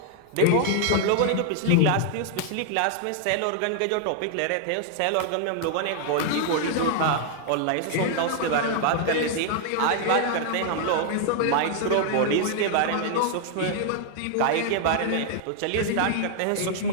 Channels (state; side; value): different; both; correlation 0.00